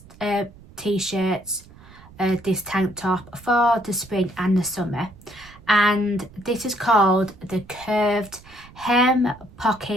t-shirts, this tank top for the spring and the summer, and this is called the Curved Hem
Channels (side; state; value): right; noise; rumble, 22 dB below the sound